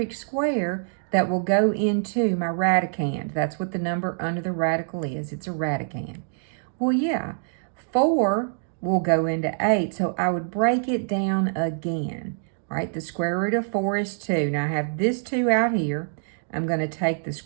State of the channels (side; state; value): left; silent; digital silence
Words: square that will go into my radicand? That's what the number under the radical is. It's a radicand. Well, yeah, 4 will go into 8, so I would break it down again. All right, the square root of 4 is 2. Now I have this 2 out here. I'm going to take the